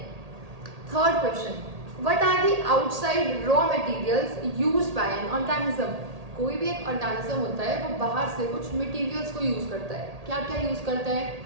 Third question, what are the outside raw materials used by an organism? कोई भी एक ऑर्गेनिज्म होता है वो बाहर से कुछ मटेरियल्स को यूज करता है। क्या क्या यूज करता है?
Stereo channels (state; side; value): late; left; 1.8 ms